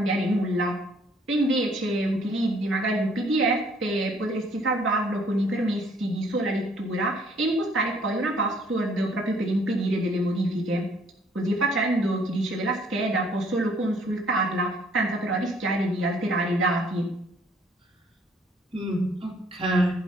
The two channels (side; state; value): both; normal; correlation 0.62